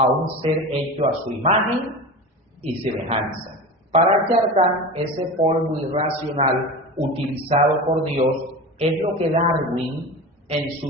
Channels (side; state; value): both; normal; correlation 0.29